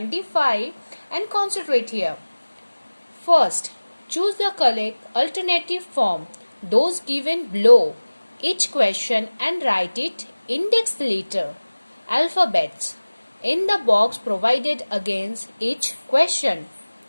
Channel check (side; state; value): both; inverted; correlation -1.00